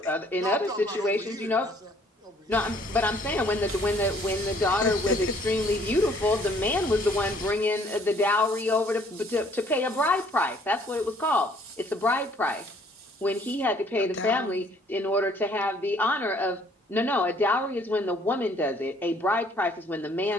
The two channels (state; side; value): normal; both; correlation 0.60